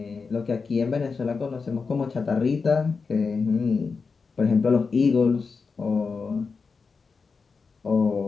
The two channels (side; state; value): right; quieter; 4.9 dB